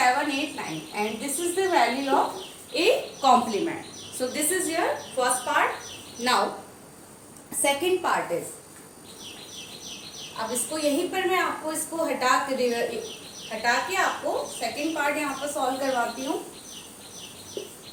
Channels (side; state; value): both; identical; correlation 1.00